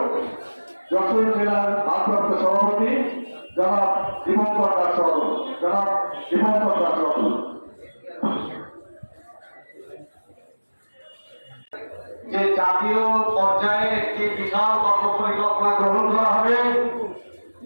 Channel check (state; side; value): inverted; both; correlation -1.00